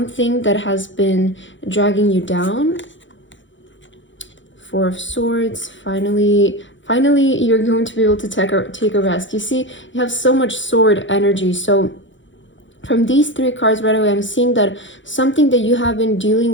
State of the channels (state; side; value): late; right; 0.55 ms